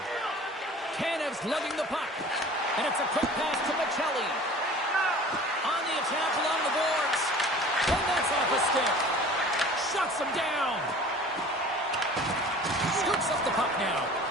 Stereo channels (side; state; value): both; normal; correlation 0.44